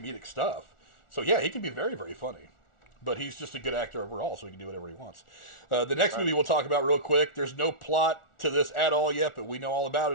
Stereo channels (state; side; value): late; right; 1.4 ms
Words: stuff. So yeah, he can be very, very funny. But he's just a good actor overall, so he can do whatever he wants. The next movie we'll talk about real quick, there's no plot to this at all yet, but we know all about